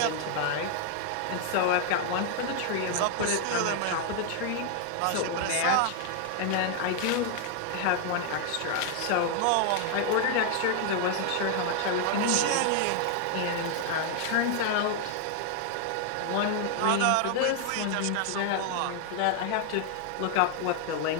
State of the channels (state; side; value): different; both; correlation 0.00